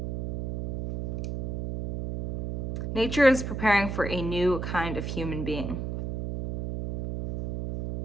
Nature is preparing for a new kind of human being.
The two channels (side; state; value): right; noise; hum, 4 dB below the sound